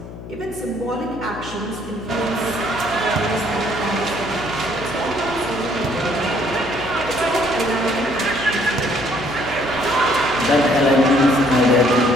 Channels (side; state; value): left; noise; hum, 13 dB below the sound